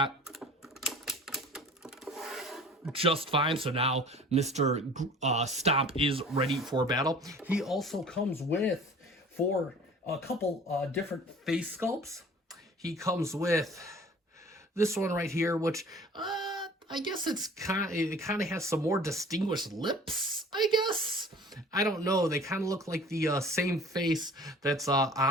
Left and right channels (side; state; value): both; normal; correlation 0.46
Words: just fine. So now Mr. Stomp is ready for battle. He also comes with, for a couple different face sculpts, he comes with this one right here, which I guess it kind of has some more distinguished lips, I guess. I don't know. They kind of look like the same face that's